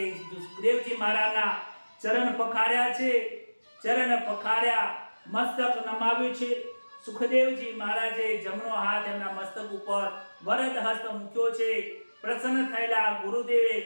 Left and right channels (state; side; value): inverted; both; correlation -1.00